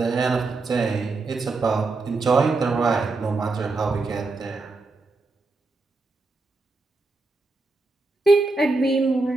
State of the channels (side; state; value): left; quieter; 3.5 dB